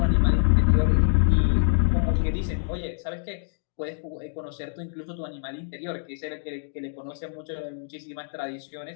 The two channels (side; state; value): right; silent; digital silence